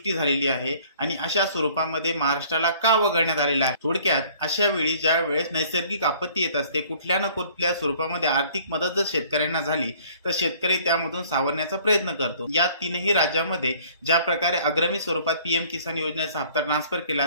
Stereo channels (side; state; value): both; inverted; correlation -0.55